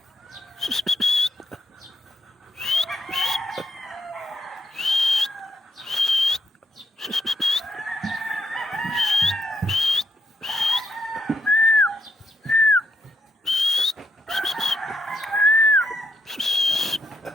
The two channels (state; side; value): normal; both; correlation 0.76